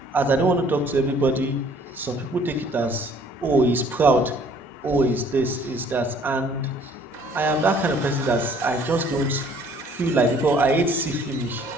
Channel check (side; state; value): both; normal; correlation 0.58